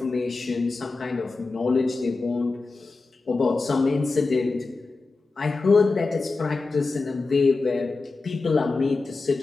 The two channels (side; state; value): right; quieter; 3.8 dB